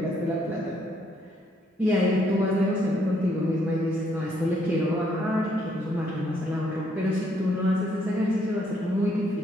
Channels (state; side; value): normal; both; correlation 0.70